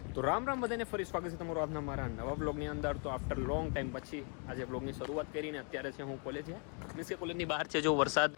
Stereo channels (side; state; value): right; quieter; 38.3 dB